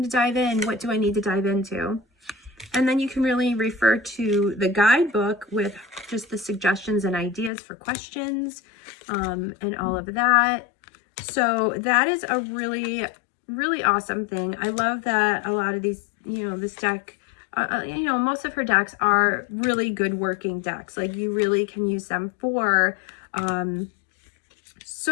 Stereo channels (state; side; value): drops out; right; at 7.5 s